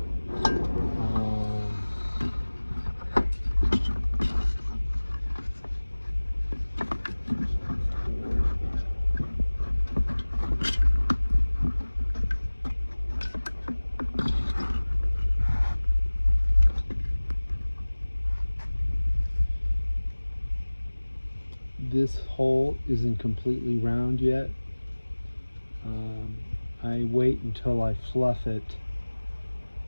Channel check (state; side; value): inverted; both; correlation -1.00